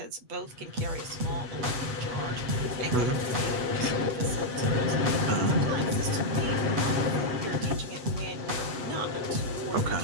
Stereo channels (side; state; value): left; late; 8.1 ms